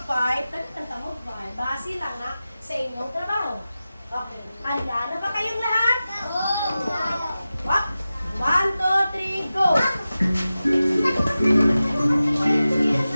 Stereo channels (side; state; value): both; inverted; correlation -0.94